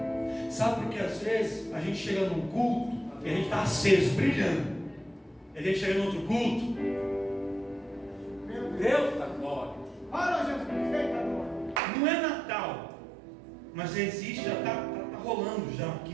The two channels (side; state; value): left; drops out; at 11.8 s